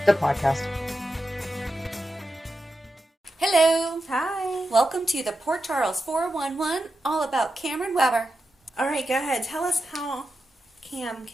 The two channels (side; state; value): both; normal; correlation 0.89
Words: the podcast. Hello. Hi. Welcome to the Port Charles 411, all about Cameron Weber. All right, go ahead. Tell us how Cam